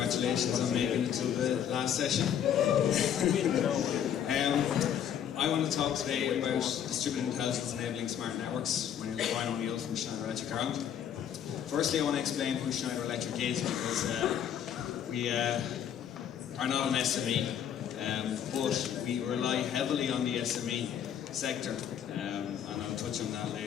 on making it to the last session. I want to talk today about distributed intelligence enabling smart networks. My name is Brian O'Neill from Schneider Electric Ireland. Firstly, I want to explain who Schneider Electric is, because we are not an SME, but we rely heavily on the SME sector, and I'll touch on that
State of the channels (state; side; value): quieter; right; 9.3 dB